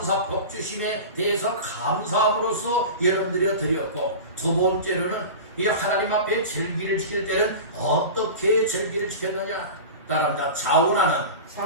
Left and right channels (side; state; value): both; inverted; correlation -0.31